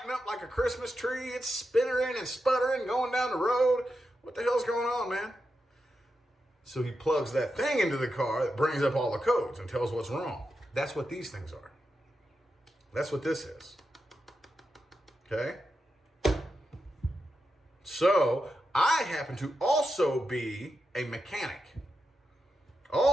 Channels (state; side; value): normal; both; correlation 0.88